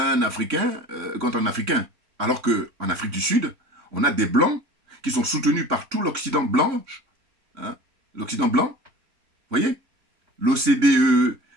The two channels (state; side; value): late; left; 3.6 ms